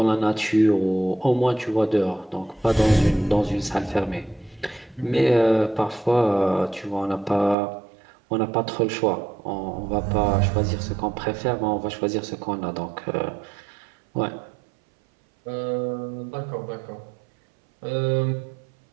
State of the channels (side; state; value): left; drops out; at 7.6 s